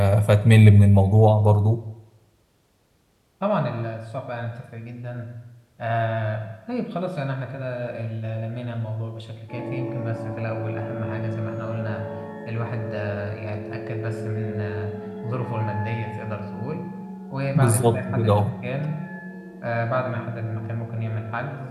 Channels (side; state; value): both; identical; correlation 1.00